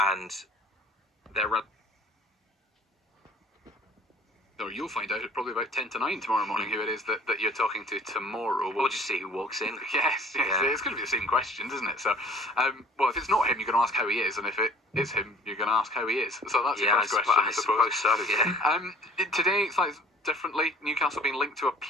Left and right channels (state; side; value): normal; both; correlation 0.50